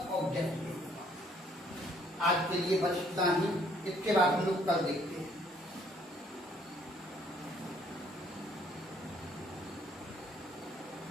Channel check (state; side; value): normal; both; correlation 0.64